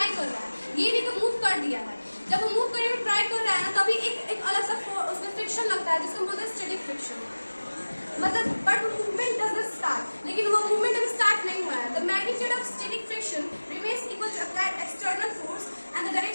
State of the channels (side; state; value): both; inverted; correlation -1.00